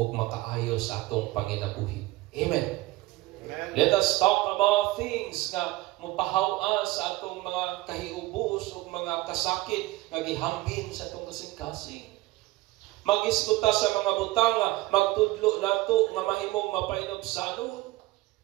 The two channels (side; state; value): left; quieter; 19.2 dB